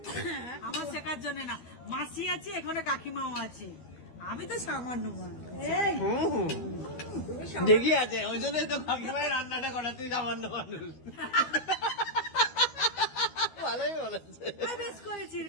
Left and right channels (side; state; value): right; late; 12 ms